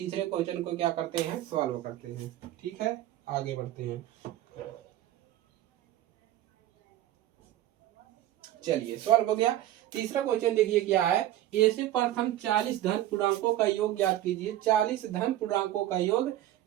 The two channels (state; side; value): quieter; left; 13.8 dB